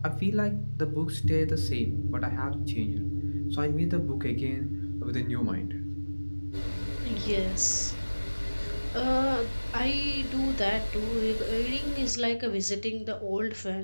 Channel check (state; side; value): inverted; both; correlation -1.00